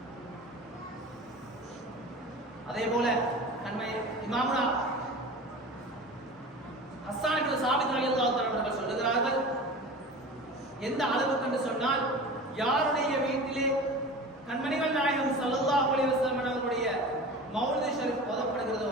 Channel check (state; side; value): normal; both; correlation 0.35